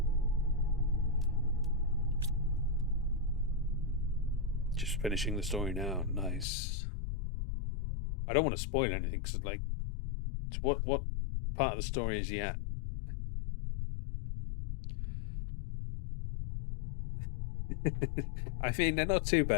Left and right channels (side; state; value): right; drops out; at 6.5 s